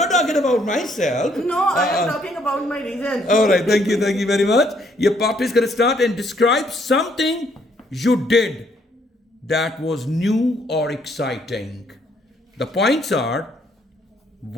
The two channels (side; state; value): both; normal; correlation 0.68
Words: talking about myself. No, I am talking about my region. All right, thank you very much. Your part is going to start and describe something you did that was new or exciting. The points are